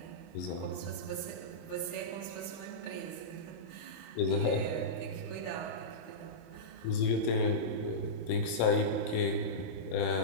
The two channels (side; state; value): right; late; 26 ms